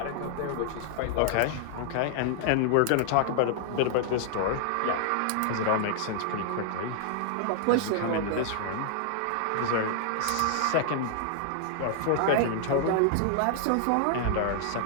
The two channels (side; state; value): both; different; correlation -0.01